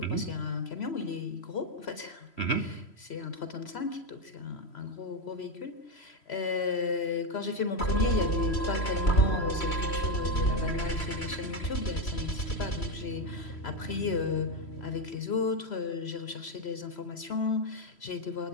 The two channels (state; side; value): late; right; 3.0 ms